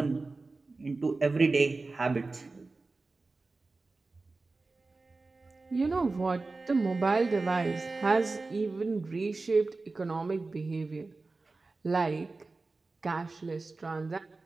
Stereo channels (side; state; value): left; quieter; 3.6 dB